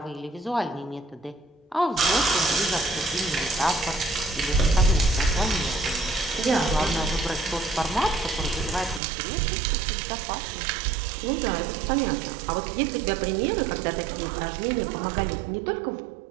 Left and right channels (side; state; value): left; drops out; at 9.0 s